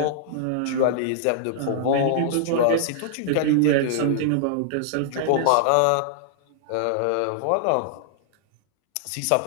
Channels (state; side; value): different; both; correlation -0.01